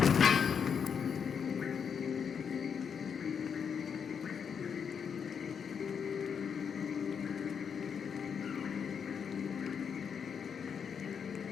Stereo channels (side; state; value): right; quieter; 6.9 dB